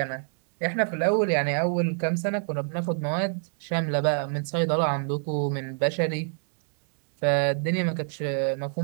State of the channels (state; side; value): silent; left; 61 dB below the other